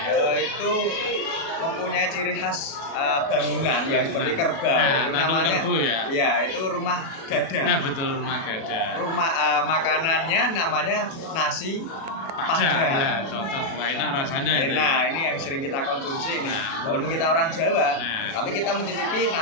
Itu mempunyai ciri khas bangunan yang seperti kerbau. Namanya kerbau ya. Iya, itu rumah gada. Nah, betul, rumah gada. Rumah makanannya namanya nasi Padang. Nah, cocok, enak rasanya itu. Nah, ini yang sering kita konsumsi ini. Walaupun kita orang Jawa, tapi kita mencicipi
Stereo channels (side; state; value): right; late; 37 ms